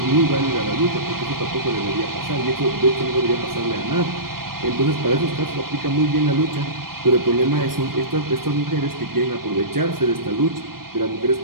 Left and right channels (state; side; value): late; left; 0.93 ms